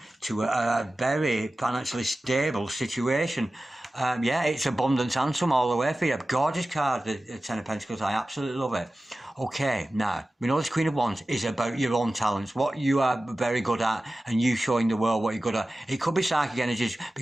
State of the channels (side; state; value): both; normal; correlation 0.95